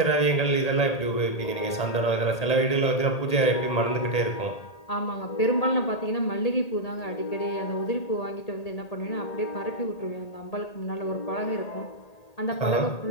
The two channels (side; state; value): right; late; 1.8 ms